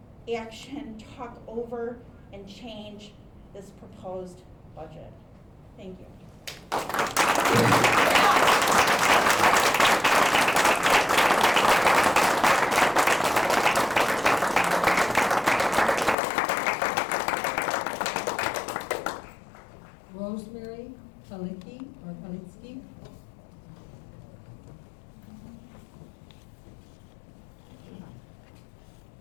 action, talk over, and change this proposed budget. Thank you. Rosemary Palicki or Palitsky.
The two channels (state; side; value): drops out; right; at 16.2 s